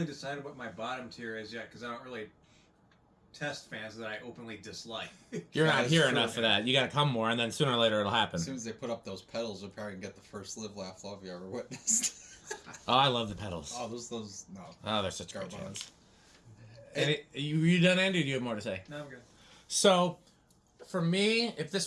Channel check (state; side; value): identical; both; correlation 1.00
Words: decided what my bottom tier is yet because I don't really test fans that I openly dislike. You're not here enough for that. You gotta come more, and then sooner or later it'll happen. As soon as they put up those pedals, we'll probably get the first Live, Laugh, Love you ever witnessed. Oh, I love the pedals. Oh, those no. Oh, they're such great fans. You done, Andy? Or do you have more to say? No, I'm good. So, for me, if